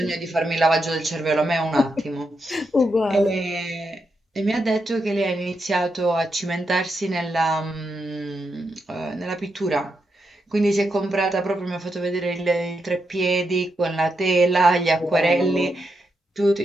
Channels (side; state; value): both; normal; correlation 0.84